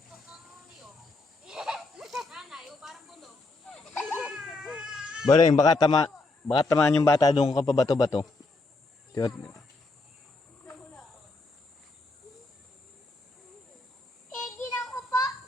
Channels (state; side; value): quieter; right; 3.2 dB